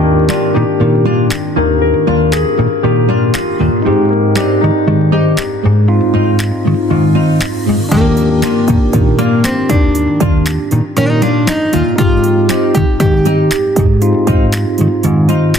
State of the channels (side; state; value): both; normal; correlation 0.67